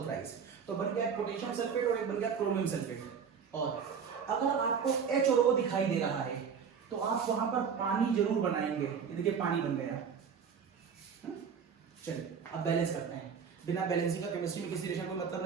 थ्राइस। तो बन गया पोटेशियम सल्फेट और एक बन गया क्रोमियम सल्फेट। और अगर आपको H और O दिखाई दे रहा है तो आप वहां पर पानी जरूर बनाएंगे। ये देखिए पानी बन गया। चलिए अब बैलेंस करते हैं। बिना बैलेंसिंग का केमिस्ट्री में किसी रिएक्शन को मतलब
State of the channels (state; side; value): quieter; left; 6.7 dB